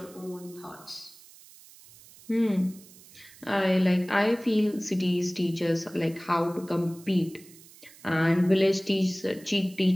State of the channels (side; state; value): right; noise; hiss, 22 dB below the sound